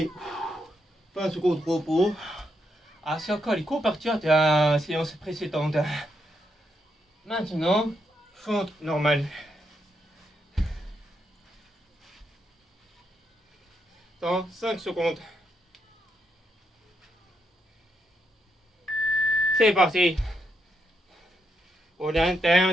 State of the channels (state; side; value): normal; both; correlation 0.80